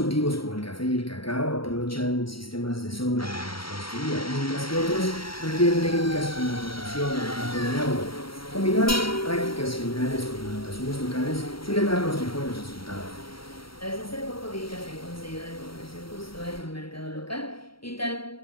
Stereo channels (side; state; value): right; late; 0.74 ms